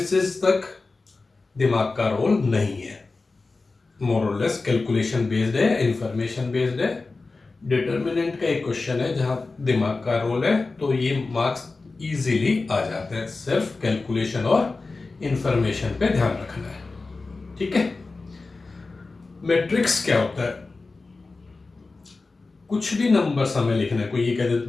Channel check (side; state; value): right; quieter; 3.7 dB